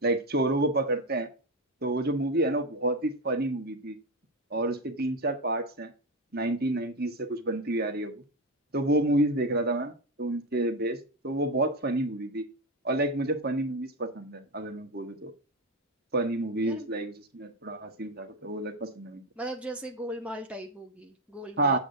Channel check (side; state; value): both; normal; correlation 0.12